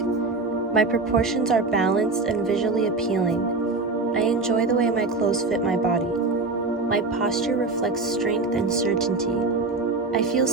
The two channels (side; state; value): left; quieter; 3.6 dB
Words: My proportions are balanced and visually appealing. I enjoy the way my clothes fit my body. My posture reflects strength and certainty. I feel